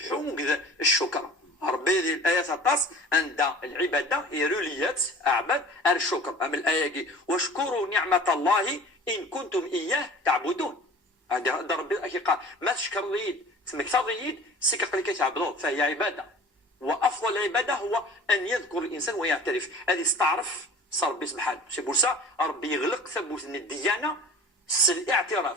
الشكر ربي الآيات الطاس عند العبادة يروليات أعبد الشكر أما الآية واشكروا نعمة الله إن كنتم إياه تعبدون هذا ربي قال ما تشكر ليد تسمك تضيد سكق لك تعبدون فهي عبادة وأفضل العبادة هو أن يذكر الإنسان ويعترف هذه استعرف صار ربي سبحانه سي بورسا ربي يغلق ثبوت الديانة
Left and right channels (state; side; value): normal; both; correlation 0.42